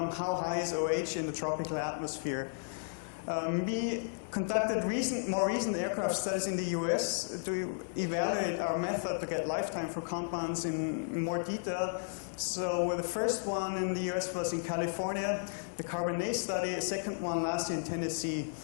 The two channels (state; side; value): silent; right; 55 dB below the other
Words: high is OH in the tropical atmosphere? We conducted more recent aircraft studies in the US to evaluate our method to get lifetime for compounds in more detail. So the first one in the US was in California, the Carbonate study, a second one last year in Tennessee.